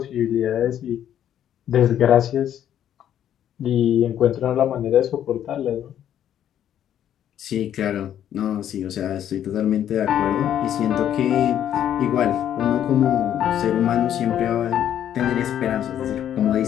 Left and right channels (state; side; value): quieter; right; 10.5 dB